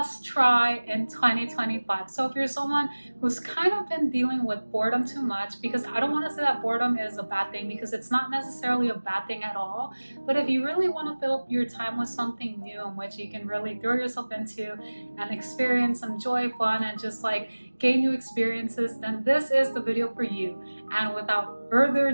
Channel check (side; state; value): both; inverted; correlation -1.00